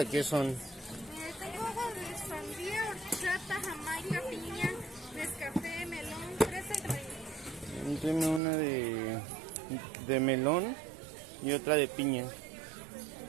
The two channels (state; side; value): drops out; left; at 8.4 s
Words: qué son? Tengo agua de sandía, horchata, jamaica, piña, nescafé, melón, fresa y vainilla. Deme una de melón y otra de piña.